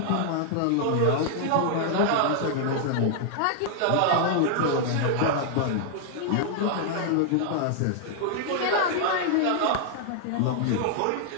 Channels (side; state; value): both; different; correlation 0.00